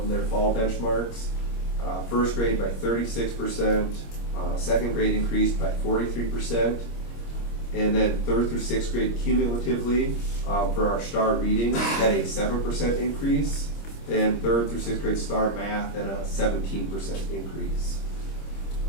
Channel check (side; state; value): right; late; 26 ms